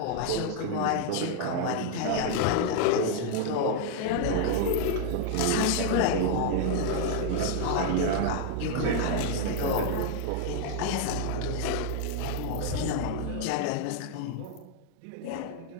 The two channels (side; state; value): both; different; correlation 0.00